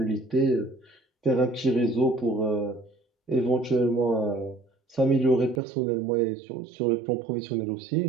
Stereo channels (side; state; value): left; drops out; at 5.6 s